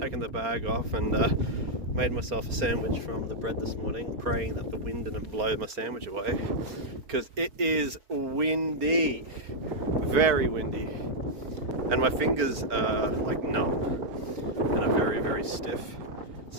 the bag off, and made myself a sandwich from the bread this morning, praying that the wind didn't blow my sandwich away, because it is windy. Very windy, and my fingers are like numb and are very, very stiff.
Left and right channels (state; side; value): late; left; 4.4 ms